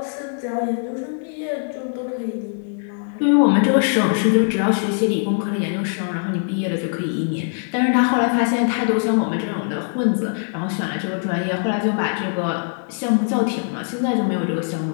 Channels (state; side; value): silent; right; 64 dB below the other